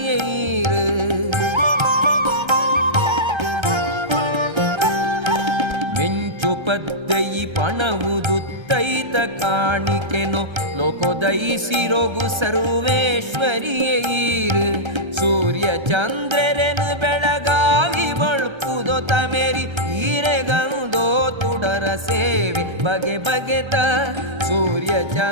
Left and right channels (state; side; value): late; left; 1.3 ms